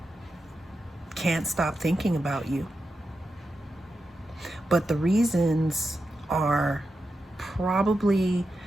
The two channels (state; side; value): normal; both; correlation 0.89